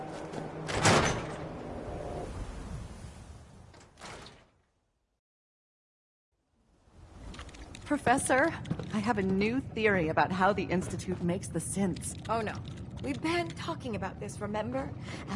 Professor, I have a new theory about how the Institute makes the synths. Oh no. We've been talking about this, remember?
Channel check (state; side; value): identical; both; correlation 1.00